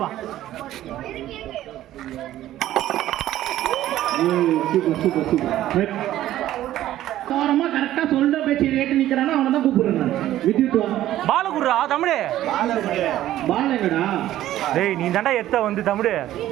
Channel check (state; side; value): quieter; left; 13.5 dB